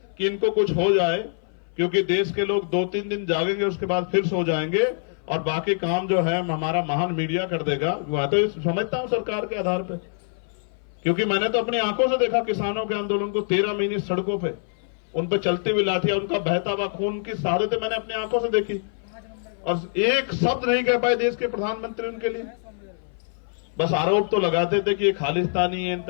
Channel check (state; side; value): silent; right; 58 dB below the other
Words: कि इनको कुछ हो जाए, क्योंकि देश के लोग 2-3 दिन जागेंगे, उसके बाद फिर सो जाएंगे और बाकी काम जो है हमारा महान मीडिया कर देगा। वह तो समझता हूं सरकार के आधार पे, क्योंकि मैंने तो अपनी आंखों से देखा किसानों के आंदोलन को, 13 महीने सड़कों पे, उन पर चलती हुई लाठियां, उनका बहता हुआ खून की शहादतें मैंने अपनी आंखों से देखी, और एक शब्द नहीं कह पाए देश के प्रधानमंत्री उनके लिए। बस आरोप तो लगाते थे कि ये खालिस्तानी है, इन